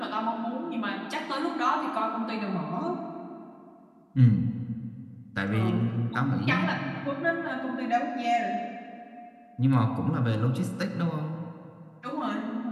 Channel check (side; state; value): both; identical; correlation 1.00